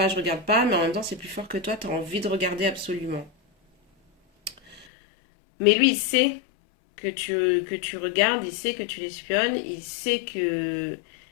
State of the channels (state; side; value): drops out; right; at 4.9 s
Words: mais en même temps c'est plus fort que toi, tu as envie de regarder absolument. Mais lui, il sait que tu regardes, il sait que tu l'espionnes, il sait que